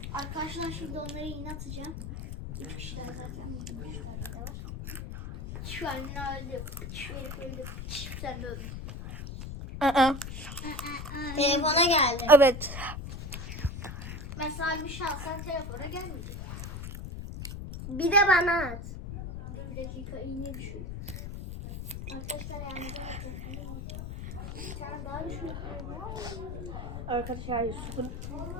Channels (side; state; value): left; noise; rumble, 7 dB below the sound